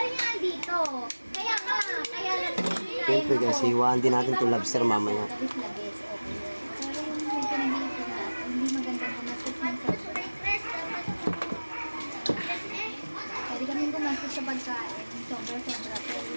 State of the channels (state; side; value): inverted; both; correlation -1.00